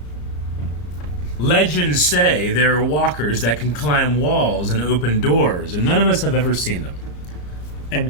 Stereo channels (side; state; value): right; late; 34 ms